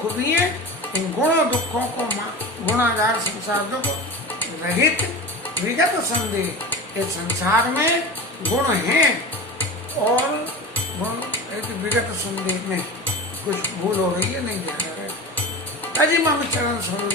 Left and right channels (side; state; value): both; normal; correlation 0.31